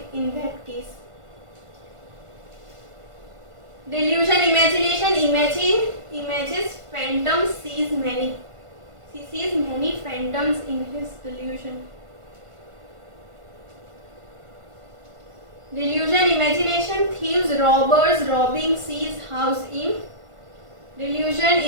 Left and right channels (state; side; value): late; left; 1.5 ms